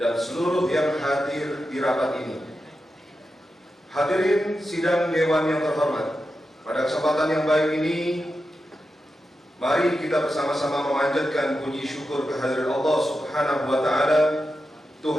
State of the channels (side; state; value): both; normal; correlation 0.90